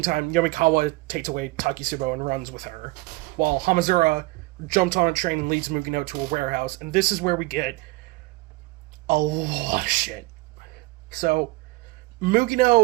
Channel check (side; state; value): left; quieter; 22.4 dB